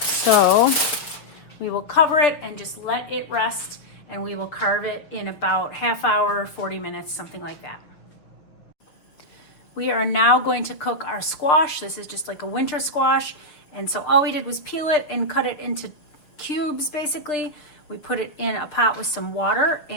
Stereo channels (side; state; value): right; late; 6.9 ms